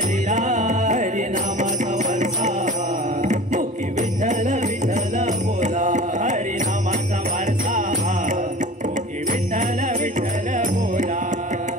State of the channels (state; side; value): normal; both; correlation 0.39